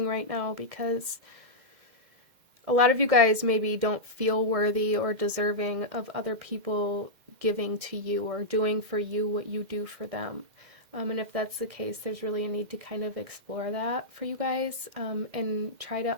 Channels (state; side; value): late; left; 1.7 ms